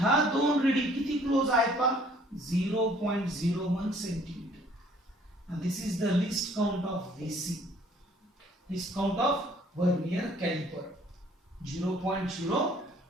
दोन रिडिंग किती क्लोज आहेत पहा? 0.01 centimetre. and this is the least count of VC. least count of vernier caliper 0.01.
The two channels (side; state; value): both; normal; correlation 0.58